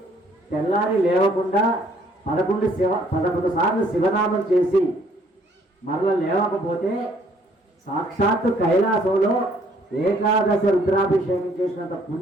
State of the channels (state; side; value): normal; both; correlation 0.63